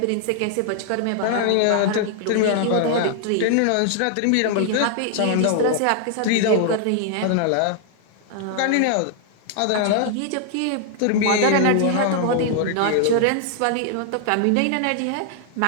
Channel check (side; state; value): both; different; correlation -0.01